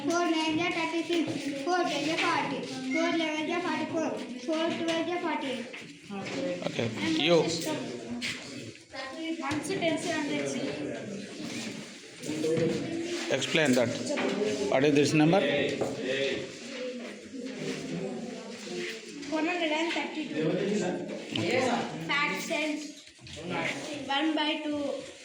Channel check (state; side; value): identical; both; correlation 1.00